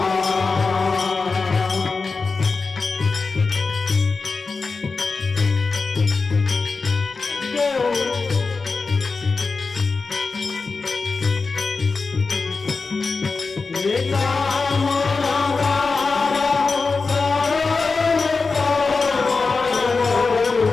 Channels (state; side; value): quieter; right; 4.3 dB